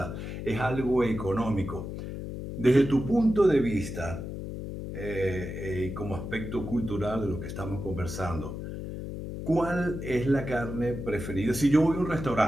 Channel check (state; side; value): noise; left; hum, 7 dB below the sound